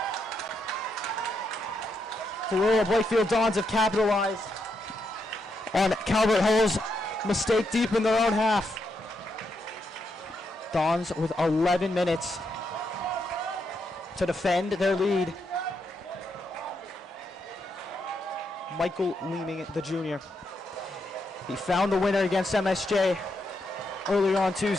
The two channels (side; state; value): both; normal; correlation 0.81